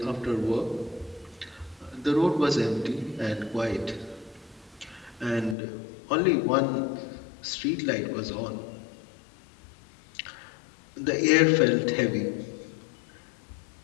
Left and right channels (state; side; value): drops out; right; at 5.6 s